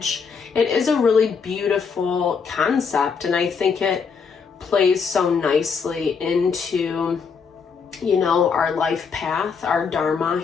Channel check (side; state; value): right; quieter; 5.7 dB